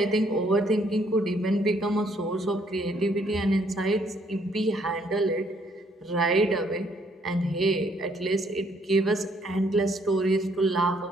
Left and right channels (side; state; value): both; normal; correlation 0.67